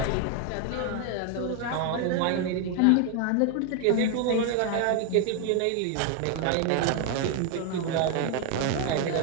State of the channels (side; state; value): both; different; correlation 0.01